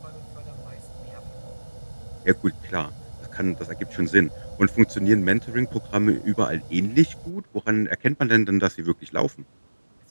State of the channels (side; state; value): both; inverted; correlation -1.00